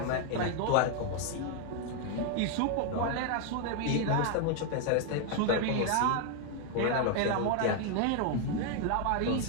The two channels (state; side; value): different; both; correlation 0.01